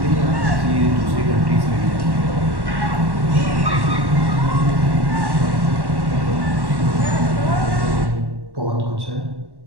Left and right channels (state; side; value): late; left; 1.1 ms